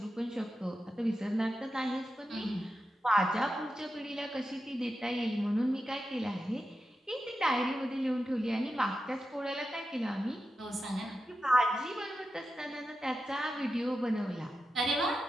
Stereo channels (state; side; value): normal; both; correlation 0.90